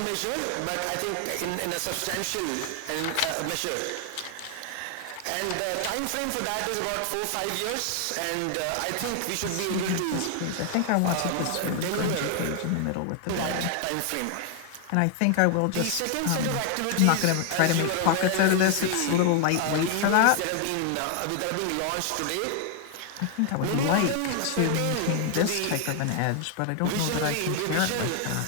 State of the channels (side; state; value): both; different; correlation 0.00